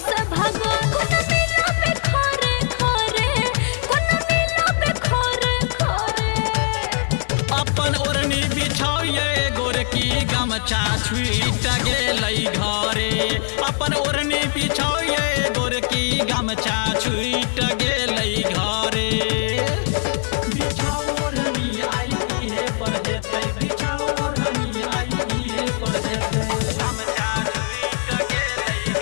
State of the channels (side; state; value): right; silent; digital silence